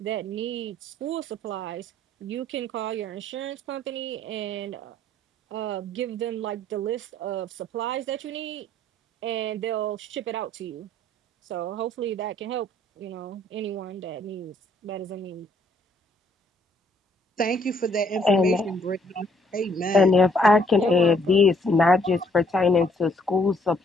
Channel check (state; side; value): normal; both; correlation 0.65